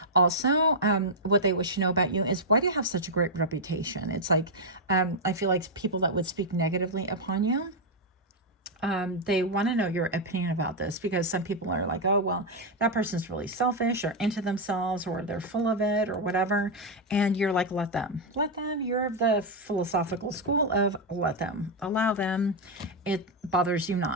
also what they wish to know about you is, why do you have such a great reputation? It's like, I feel like people that would speak negatively upon you, they want to know your opinion about this, because some people are like, oh, well, that person's really selfish or into themselves, or they're full of it or whatever. And you're like, let them. You're of the philosophical school of let them, allow them. It bothers you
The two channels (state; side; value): normal; both; correlation -0.01